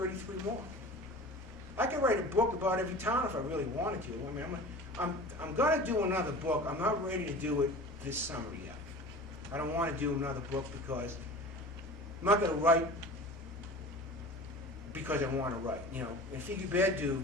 more. I could write a book about every town if I really wanted to. I mean, I'm going to do another book. I'm not ready to do it this summer yet. I don't want to do another book because I'm not going to write because I want to write. In Figghiu Beddu,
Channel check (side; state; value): both; normal; correlation 0.38